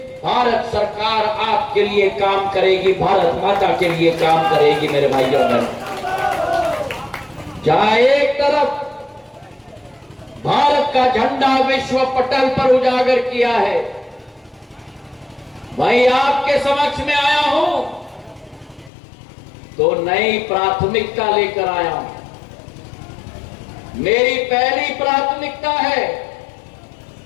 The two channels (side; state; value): right; drops out; at 18.9 s